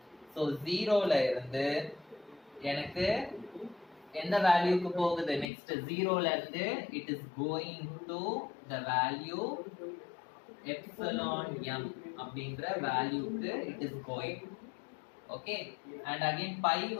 So 0 ல இருந்து எனக்கு எந்த வேல்யூக்கு போகுது, next 0 ல இருந்து it is going to the value epsilon m அப்படிங்கற வேல்யூக்கு it is going. Okay, and again pi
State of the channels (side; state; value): right; drops out; at 5.5 s